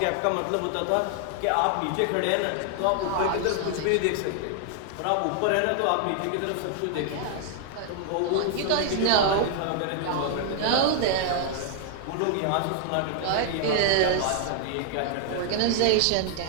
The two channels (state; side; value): different; both; correlation 0.00